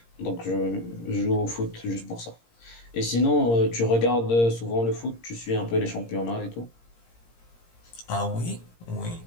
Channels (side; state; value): right; late; 17 ms